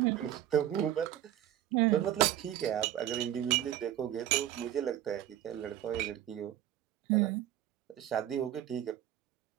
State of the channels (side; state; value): left; quieter; 11.9 dB